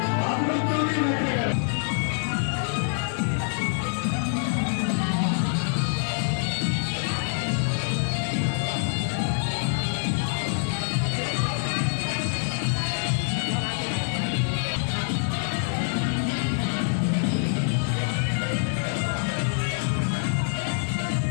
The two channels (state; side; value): silent; right; 61 dB below the other